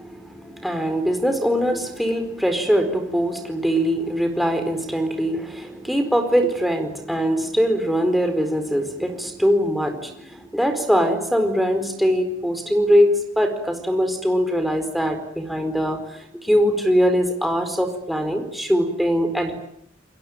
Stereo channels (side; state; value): both; normal; correlation 0.84